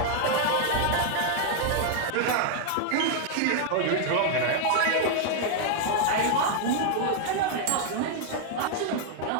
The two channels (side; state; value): both; different; correlation 0.00